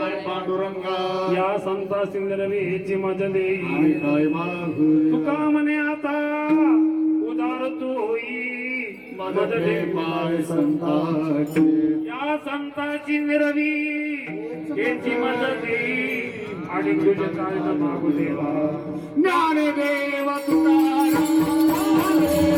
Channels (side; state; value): both; identical; correlation 1.00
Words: पांडुरंगा या संता सिंदरवीची मज देई काय मागू तुका म्हणे आता उदार तू होई मज दे पाय संताचे या संताची निरवी याची मदत देई आणि तुझे काय न मागू देवा ज्ञानदेव तुकाराम